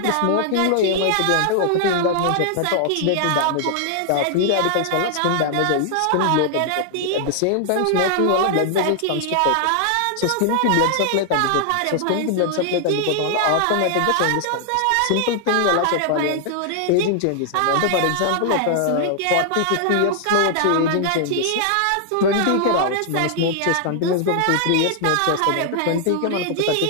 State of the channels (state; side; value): different; both; correlation 0.00